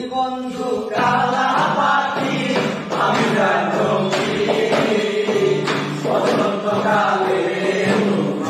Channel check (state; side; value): identical; both; correlation 1.00